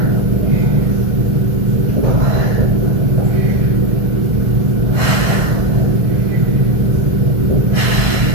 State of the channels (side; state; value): left; late; 1.7 ms